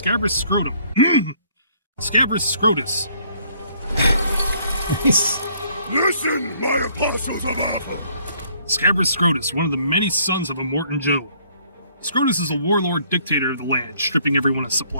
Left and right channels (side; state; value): both; inverted; correlation -0.63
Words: Scrotum. Scabrous Scrotus. Listen, my apostles of Earth! Scabrous Scrotus, one of the many sons of Immortan Joe. Scrotus is a warlord dictator of the land, stripping everyone of